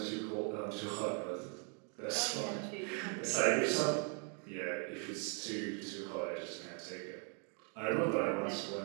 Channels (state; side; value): quieter; left; 37.9 dB